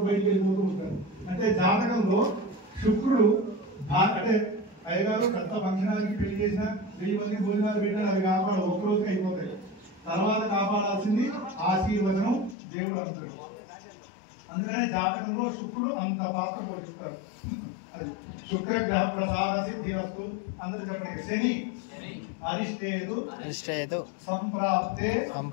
బయటికి వెళ్ళిపోతూ ఉంటారు. అంటే జాతకంలో శుక్రుడు అంటే అయ్యగారు పెద్ద ఫంక్షనాలకి పెళ్లి చేసిన 1000 మంది భోజనాలు పెట్టినా అవి కాపాడు ఒక్కరోజుకి అయిపోతాయి. తర్వాత కాపాడాల్సింది ఆశీర్వచనం దేవుడు అంటాడు. అందుకనే జాతకంలో శుక్రుడు అంత పాత్ర పోషిస్తాడు. శుక్రగ్రహ ప్రసాద సిద్ధిరస్తు. అందరూ చెప్పండి. శని అరిష్టేతు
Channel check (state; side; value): drops out; right; at 12.6 s